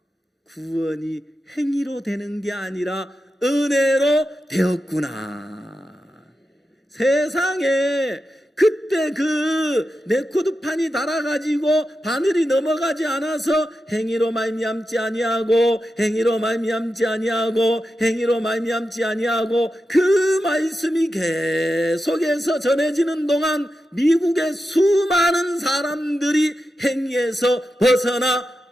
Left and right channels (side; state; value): both; normal; correlation 0.90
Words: 구원이 행위로 되는 게 아니라 은혜로 되었구나. 세상에 그때 레코드판이 달아가지고 바늘이 넘어가지 않아서 행위로 말미암지 아니하고 행위로 말미암지 아니하고 행위로 말미암지 아니하고 그 말씀이 계속해서 전해지는 동안 미국의 수많은 사람들이 행위에서 벗어나